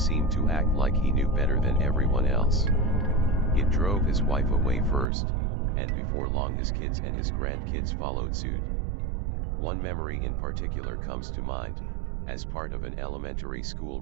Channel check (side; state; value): left; drops out; at 5.1 s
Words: to act like he knew better than everyone else. It drove his wife away first, and before long his kids and his grandkids followed suit. One memory in particular comes to mind. As part of an elementary school